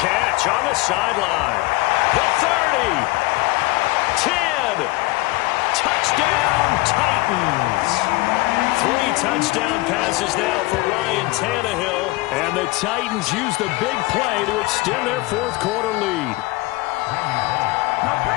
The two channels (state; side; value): quieter; right; 21.4 dB